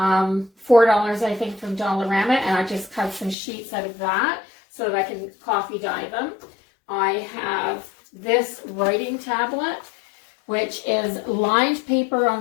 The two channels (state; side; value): drops out; right; at 3.4 s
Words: I think, from Dollarama, and I just cut some sheets out of that so that I can coffee dye them. I have this writing tablet, which is lined paper